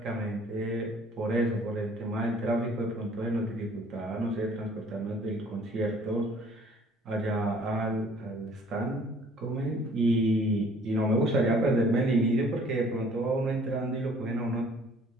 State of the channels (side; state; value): both; normal; correlation 0.56